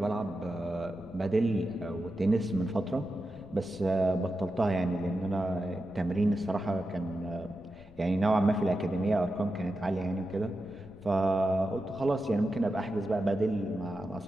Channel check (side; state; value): left; noise; rumble, 22 dB below the sound